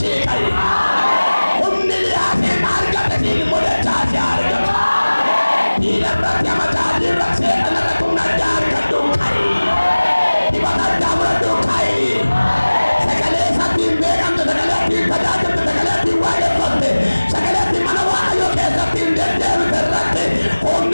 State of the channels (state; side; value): inverted; both; correlation -1.00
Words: qabi. Humni liyaasee argate siin immoo dachaasee argata. Diina irratti amataa irratti seetan irratti humna addaa argadhu qabi. Dibata addaa muradhu qabi. Sagalee isaatiin beekamte, sagalee ittiin tajaajilte, sagalee ittiin waaqeffatte, sagalee ittiin mana Waaqayyoo keessatti hin deddeebite irratti